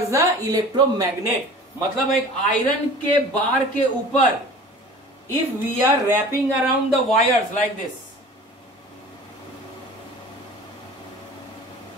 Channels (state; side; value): normal; both; correlation 0.42